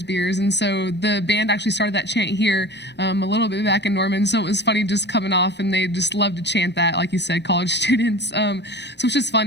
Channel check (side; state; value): right; late; 0.50 ms